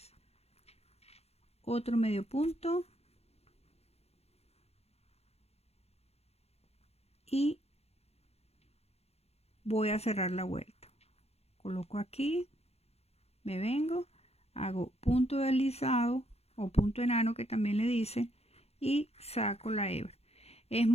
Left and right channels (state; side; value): late; right; 0.30 ms